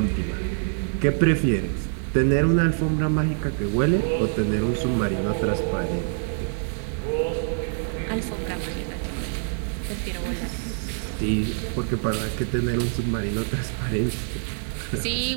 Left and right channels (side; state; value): left; silent; digital silence